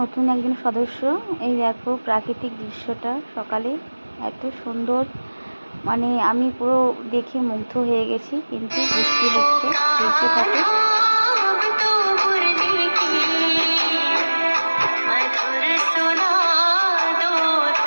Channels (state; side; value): inverted; both; correlation -1.00